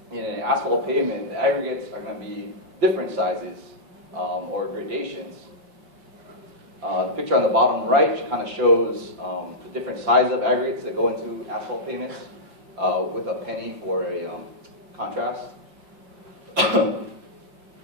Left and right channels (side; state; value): left; late; 5.8 ms